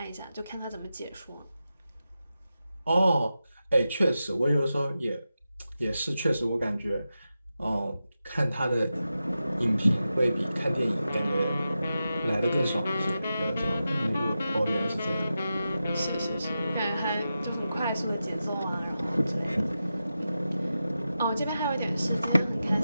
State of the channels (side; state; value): both; inverted; correlation -0.91